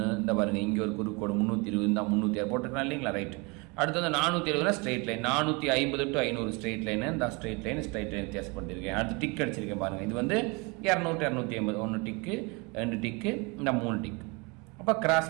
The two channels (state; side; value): quieter; left; 28.7 dB